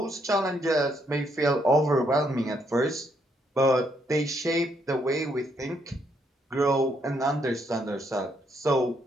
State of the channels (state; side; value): normal; both; correlation 0.74